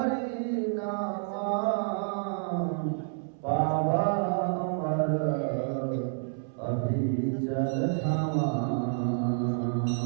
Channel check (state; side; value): silent; left; 58 dB below the other